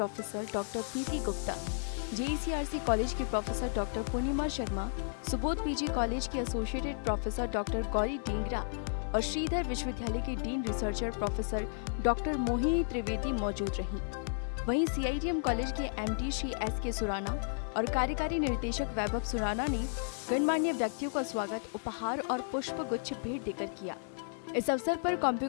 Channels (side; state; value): right; silent; digital silence